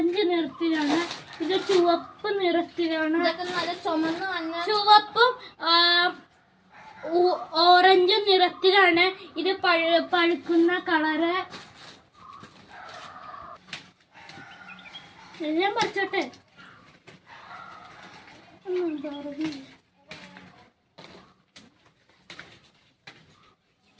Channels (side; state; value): both; identical; correlation 1.00